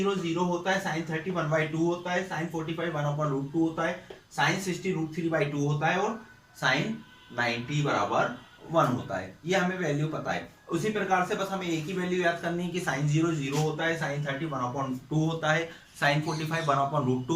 0 होता है, साइन 30 1/2 होता है, साइन 45 1/√2 होता है, साइन 60 √3/2 होता है और साइन 90 बराबर 1 होता है। ये हमें वैल्यू पता है। उसी प्रकार से बस हमें एक ही वैल्यू याद करनी है कि साइन 0 0 होता है, साइन 30 1/2 होता है, साइन 45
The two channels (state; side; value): identical; both; correlation 1.00